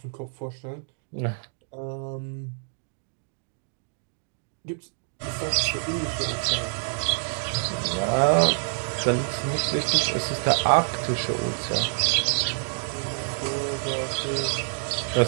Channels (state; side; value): silent; left; digital silence